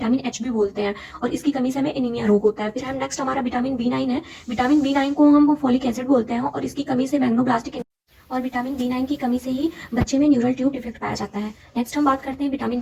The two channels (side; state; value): both; identical; correlation 1.00